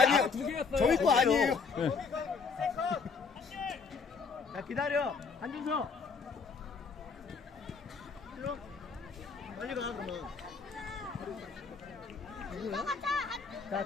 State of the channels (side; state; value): right; quieter; 5.2 dB